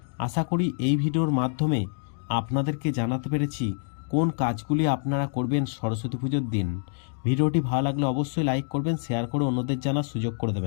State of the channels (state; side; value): silent; right; digital silence